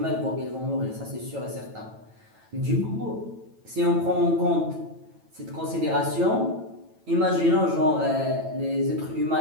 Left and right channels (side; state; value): left; late; 9.1 ms